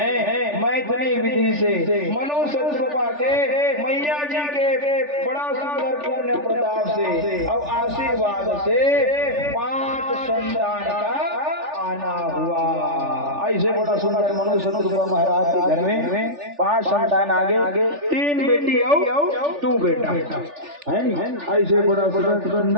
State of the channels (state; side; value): late; left; 3.4 ms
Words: मैथिली विधि से मनुष्य कृपा के मैया जी के बड़ा सुंदर पुण्य प्रताप से और आशीर्वाद से 5 संतान का आना हुआ। ऐसे बड़ा सुंदर मनुष्य कृपा महाराज के घर में 5 संतान आगे 3 बेटी और 2 बेटा है नहीं। ऐसे बड़ा